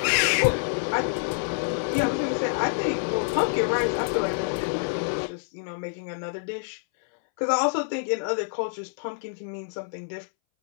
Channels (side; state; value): right; silent; 60 dB below the other